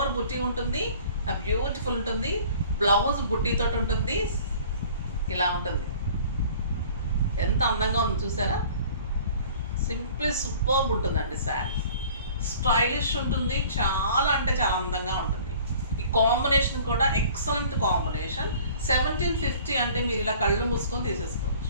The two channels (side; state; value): both; inverted; correlation -0.48